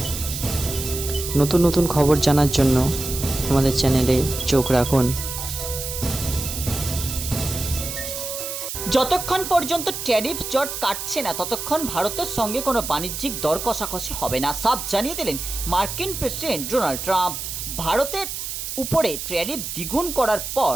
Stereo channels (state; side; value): noise; right; hiss, 6 dB below the sound